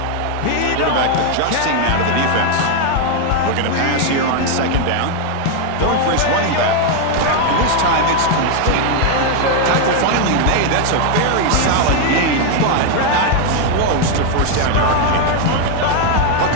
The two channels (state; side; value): different; both; correlation 0.01